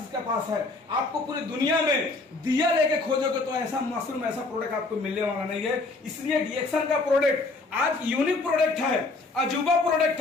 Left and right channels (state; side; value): quieter; right; 3.4 dB